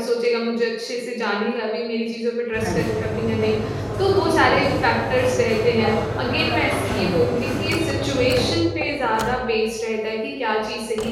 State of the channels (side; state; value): both; identical; correlation 1.00